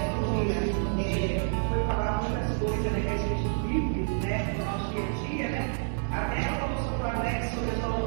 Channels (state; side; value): silent; left; digital silence